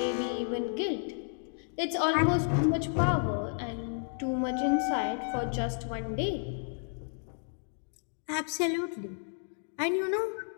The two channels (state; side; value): silent; right; 57 dB below the other